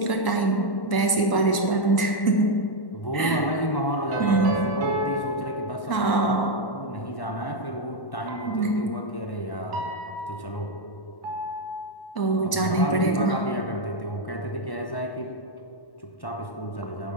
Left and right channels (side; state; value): right; late; 1.0 ms